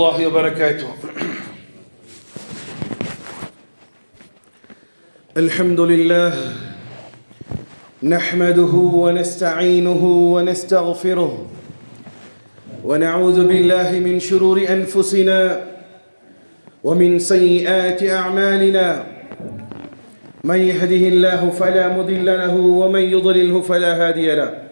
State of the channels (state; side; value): inverted; both; correlation -1.00